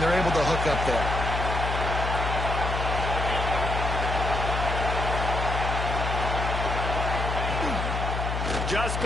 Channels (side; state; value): left; noise; hum, 2 dB below the sound